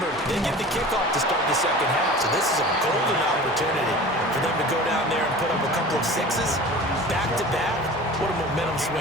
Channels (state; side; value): noise; left; hum, 25 dB below the sound